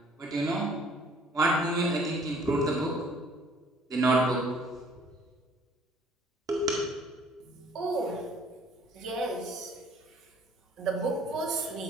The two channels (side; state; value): both; normal; correlation 0.57